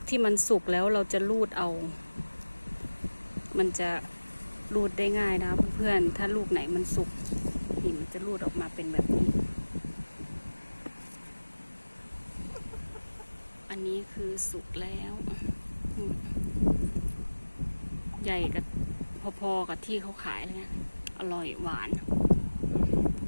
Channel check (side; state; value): both; inverted; correlation -1.00